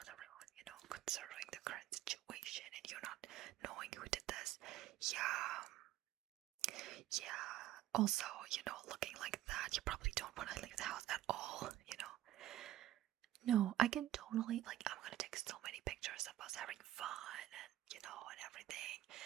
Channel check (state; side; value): quieter; left; 13.8 dB